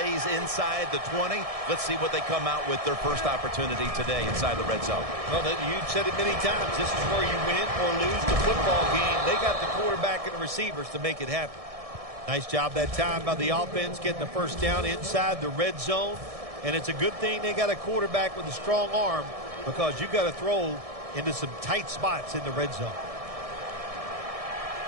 inside the 20. Let's see what they come out with their first opportunity today inside the red zone. Well, you said it many times. This is where you win or lose the football game. They got the quarterback and the receivers to make it happen. Nice job that time by the offense getting the first down inside the red zone. And it's a good thing they got a quarterback with a strong arm because you got to throw into some tight spots in the red zone.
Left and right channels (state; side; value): late; left; 1.6 ms